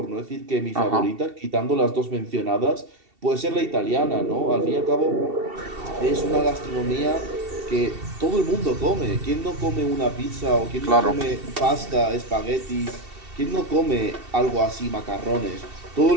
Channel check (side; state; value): left; late; 2.7 ms